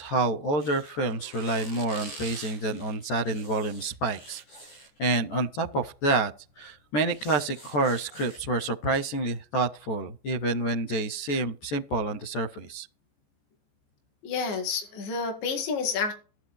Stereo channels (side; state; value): right; late; 14 ms